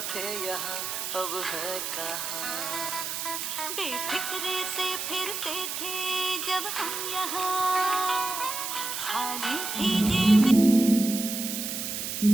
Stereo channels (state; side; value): noise; right; hiss, 4 dB below the sound